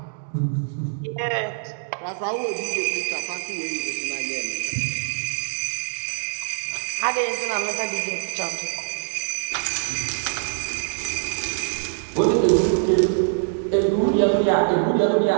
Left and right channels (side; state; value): left; silent; digital silence